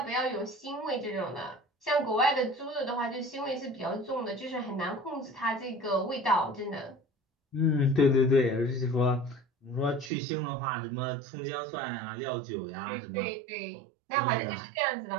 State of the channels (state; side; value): drops out; left; at 10.1 s